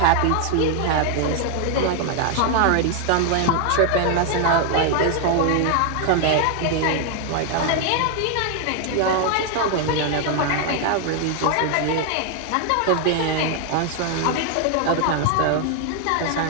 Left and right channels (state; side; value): different; both; correlation 0.00